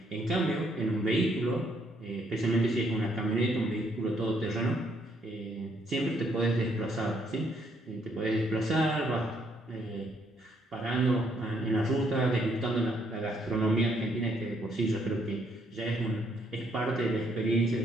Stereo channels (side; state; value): both; normal; correlation 0.70